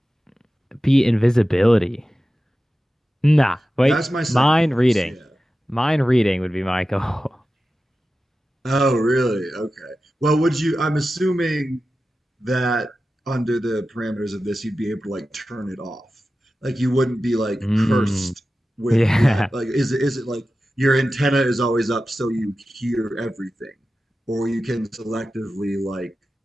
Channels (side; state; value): both; normal; correlation 0.94